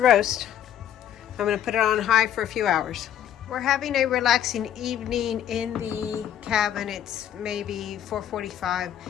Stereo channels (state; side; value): quieter; right; 10.5 dB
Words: I'm going to put it on high for a few hours. We're having a relaxing evening in the cabin. It's maybe 4:45.